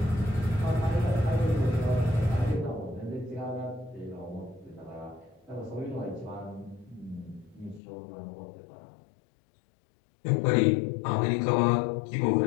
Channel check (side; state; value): right; drops out; at 7.8 s